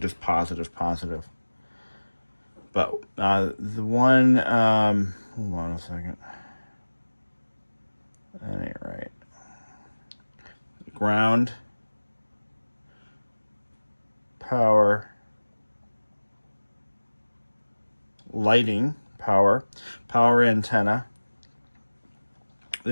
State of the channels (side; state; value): both; inverted; correlation -1.00